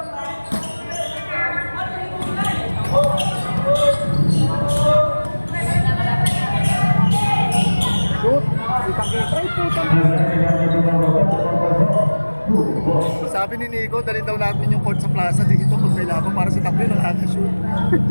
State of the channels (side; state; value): both; inverted; correlation -1.00